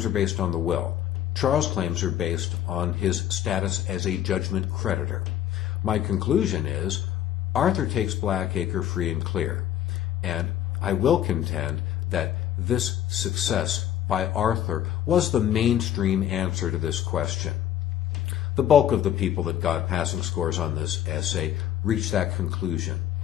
are based on the will. Charles' claims are based on his status as a judgment creditor. My conclusion is Arthur takes Blackacre free and clear, and I will contend that this success by Arthur was the mainstream answer to this question. The bulk of the people that got passing scores on this essay reached that conclusion,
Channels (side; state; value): right; quieter; 11.2 dB